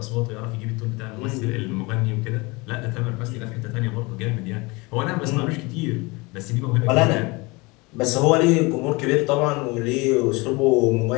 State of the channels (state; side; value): quieter; right; 25.4 dB